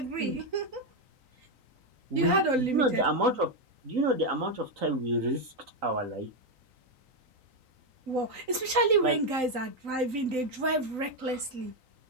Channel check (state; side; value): late; left; 3.9 ms